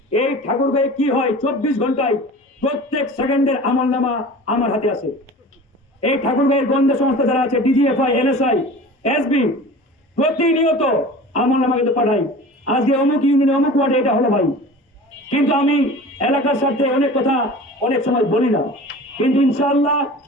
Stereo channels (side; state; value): both; normal; correlation 0.39